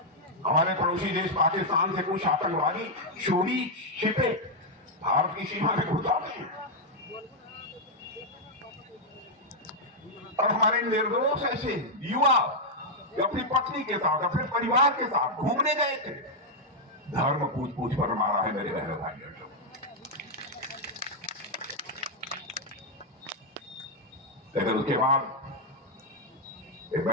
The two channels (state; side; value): normal; both; correlation -0.02